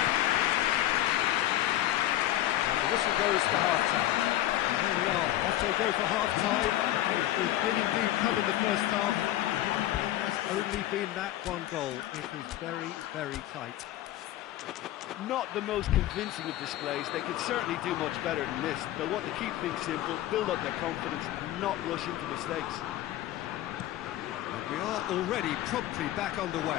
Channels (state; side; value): quieter; right; 14.1 dB